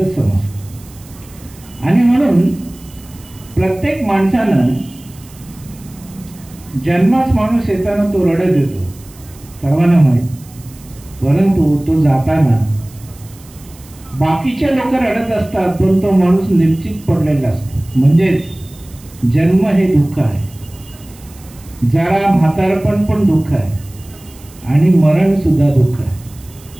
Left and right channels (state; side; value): noise; right; hiss, 23 dB below the sound